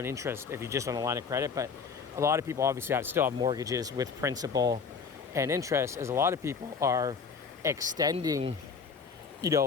interest if you're just on a line of credit, but a lot of people obviously still have mortgages with principal and interest, as a lot of people are extending,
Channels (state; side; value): quieter; right; 5.7 dB